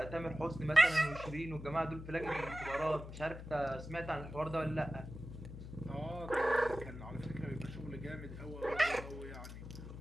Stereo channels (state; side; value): noise; left; hum, 11 dB below the sound